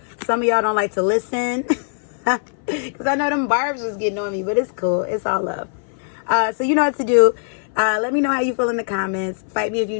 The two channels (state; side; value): silent; right; 58 dB below the other